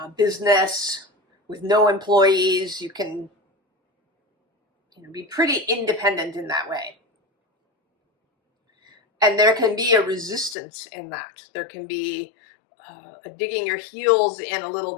business with no employees. You can, you know, be pretty independent in that way. And there can be a resistance in that. There can be a digging your heels in a little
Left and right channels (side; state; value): right; drops out; at 10.6 s